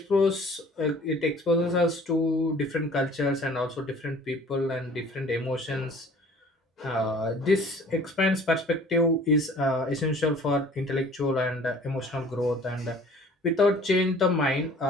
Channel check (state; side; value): normal; both; correlation 0.49